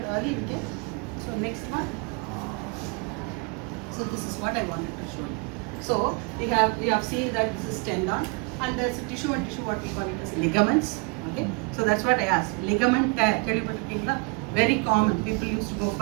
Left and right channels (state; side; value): quieter; left; 30.6 dB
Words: early, we can. So next one. So this is what I wanted to show you. So we have seen that this is tendon, and there's tissue and tissue, what we call it as ligaments. Okay. So that's what I asked. Ligament tear, very common. People used to go